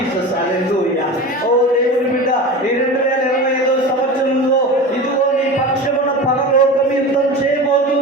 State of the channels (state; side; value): normal; both; correlation 0.30